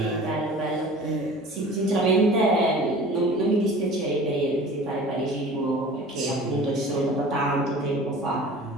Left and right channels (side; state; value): both; normal; correlation 0.42